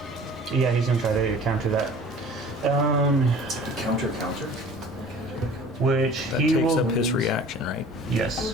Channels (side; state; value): both; normal; correlation 0.46